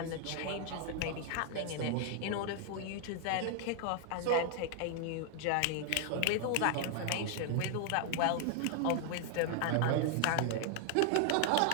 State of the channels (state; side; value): different; both; correlation 0.00